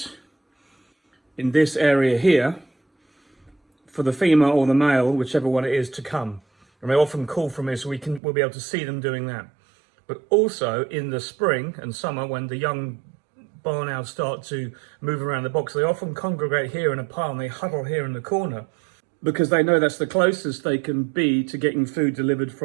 in this area here for the female or the male, whichever one it is, to come. And they often call from here, so we'll be able to see them doing that. But also in the spring and summer, when the young barn owls start to move around the box, they often congregate here in a pile and they huddle here in the corner, because they know that's the closest they can be to getting food delivered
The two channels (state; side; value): drops out; left; at 8.2 s